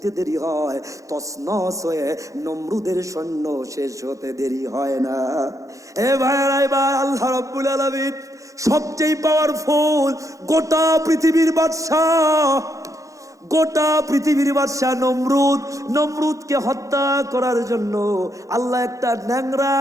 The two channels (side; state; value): left; late; 0.16 ms